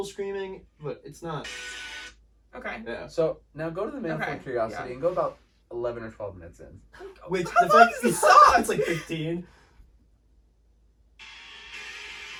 screaming, but it's not. Okay. Yeah. so now go to the Manifold Okay, Curiosity yeah. and go about 11 or 12 minutes in. Which How the long fact is the song? it's like 15.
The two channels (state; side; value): identical; both; correlation 1.00